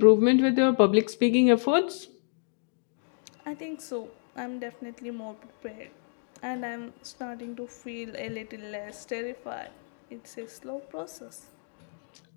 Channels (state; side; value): silent; right; digital silence